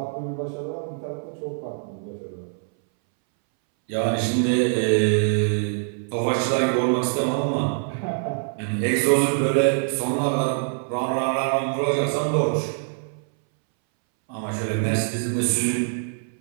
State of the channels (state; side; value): silent; left; 63 dB below the other